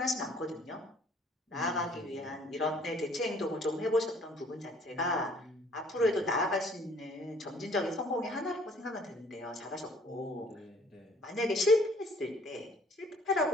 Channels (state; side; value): normal; both; correlation 0.58